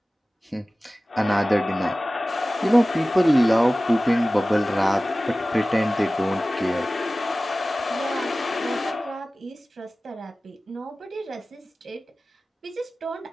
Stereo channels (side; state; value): both; normal; correlation 0.97